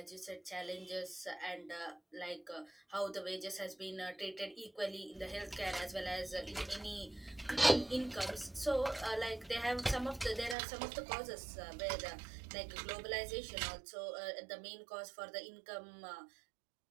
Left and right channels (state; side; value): drops out; left; at 10.6 s